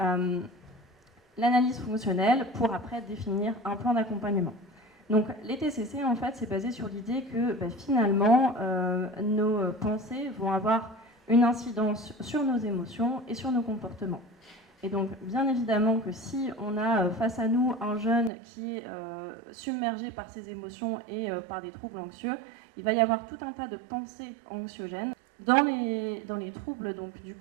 l'analyse fonctionnelle pour après définir un plan d'accompagnement. Donc les TCC, en fait, c'est basé sur l'idée que finalement, nos pensées vont avoir une incidence sur nos émotions et sur nos comportements. Et donc, bien évidemment que si on a face à nous un jeune qui est submergé par ses émotions et par des troubles anxieux, il va y avoir tout un tas de pensées anxiogènes. Dans les troubles, donc du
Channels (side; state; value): left; drops out; at 18.3 s